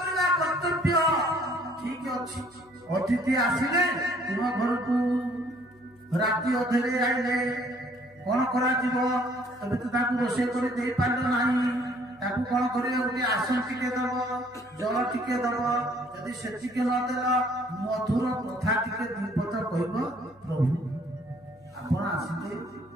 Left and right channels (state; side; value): noise; left; hum, 30 dB below the sound